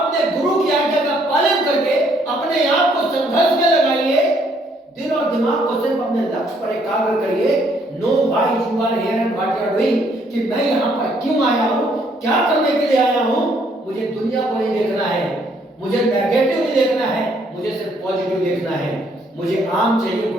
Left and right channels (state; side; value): normal; both; correlation 0.67